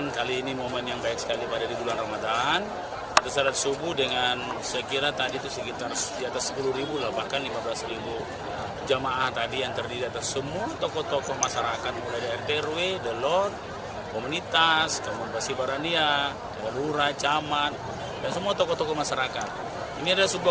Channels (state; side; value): identical; both; correlation 1.00